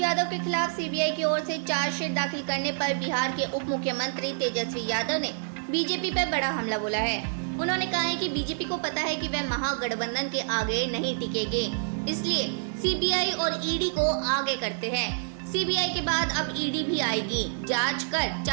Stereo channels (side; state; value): left; silent; digital silence